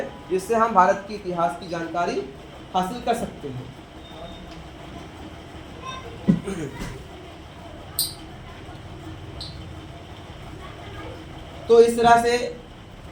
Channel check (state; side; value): identical; both; correlation 1.00